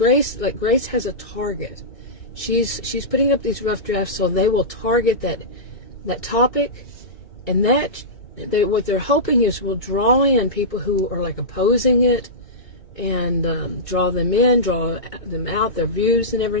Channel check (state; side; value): late; right; 2.3 ms